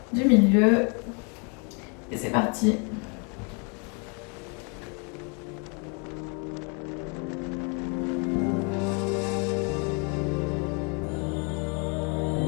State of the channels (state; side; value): quieter; right; 34.6 dB